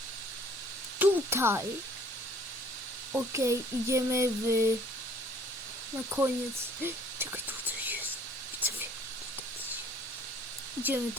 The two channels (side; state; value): both; normal; correlation 0.57